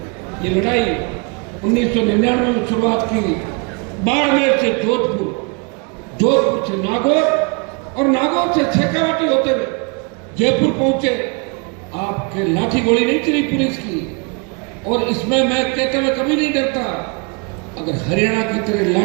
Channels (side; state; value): left; quieter; 33.1 dB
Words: ये लड़ाई 1999 में शुरुआत की, बाड़मेर से जोधपुर, जोधपुर से नागौर और नागौर से शेखावाटी होते हुए जयपुर पहुंचे। आपके लाठी गोली नहीं चली पुलिस की, और इसमें मैं कहते हुए कभी नहीं डरता। अगर हरियाणा की तरह